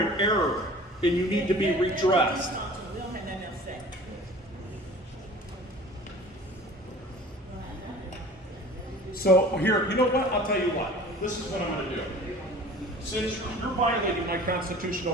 in error, and you need to be redressed. So here, you know what? I'll tell you what. This is what I'm going to do. Since you're violating my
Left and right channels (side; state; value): both; normal; correlation 0.44